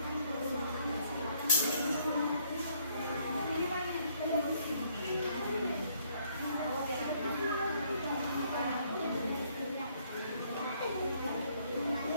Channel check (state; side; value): inverted; both; correlation -0.66